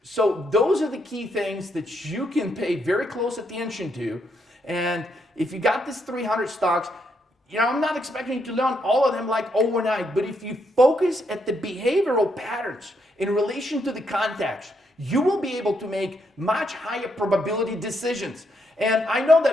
So those are the key things that you can pay very close attention to. And if you got this 300 stocks, I'm not expecting you to learn all of them like overnight, but if you focus at the behavioral patterns in relation to the context, you will be able to make much higher probability decisions. And I know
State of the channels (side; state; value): both; normal; correlation 0.77